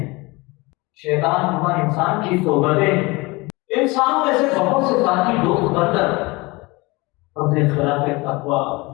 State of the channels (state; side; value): quieter; right; 24.0 dB